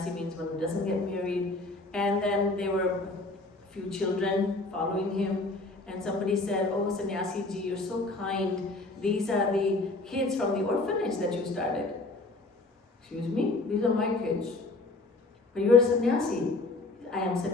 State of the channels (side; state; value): right; quieter; 3.2 dB